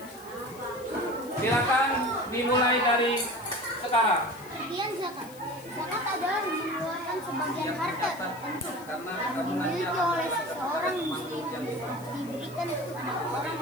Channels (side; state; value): left; noise; hiss, 20 dB below the sound